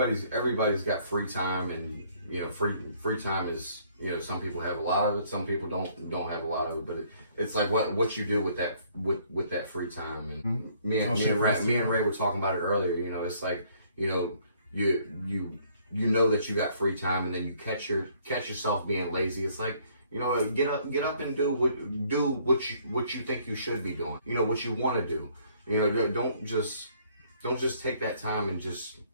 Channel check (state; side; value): inverted; both; correlation -0.63